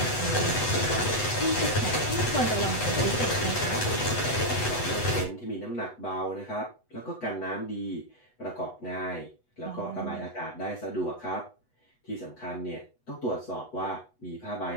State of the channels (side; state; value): right; late; 8.1 ms